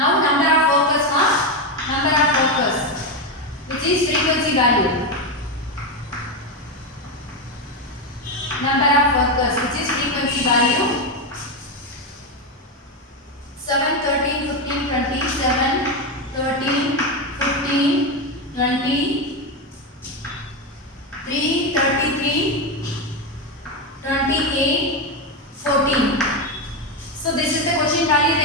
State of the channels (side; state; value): both; normal; correlation 0.10